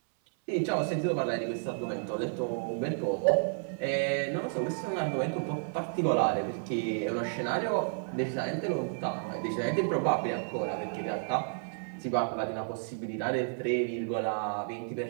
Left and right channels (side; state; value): left; silent; 57 dB below the other